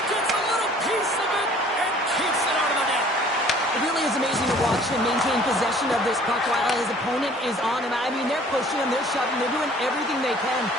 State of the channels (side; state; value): both; normal; correlation 0.53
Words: gets a little piece of it and keeps it out of the net. It really is amazing to watch him maintain possession of this puck while his opponent is on him. I mean, they're pushing him, they're shoving, they're doing everything they can.